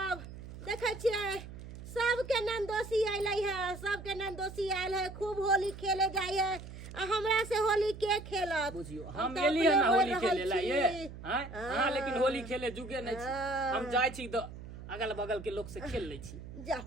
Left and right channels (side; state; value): right; noise; hum, 13 dB below the sound